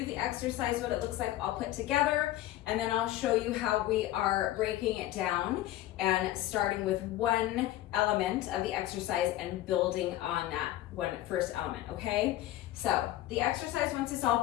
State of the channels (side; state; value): right; quieter; 14.6 dB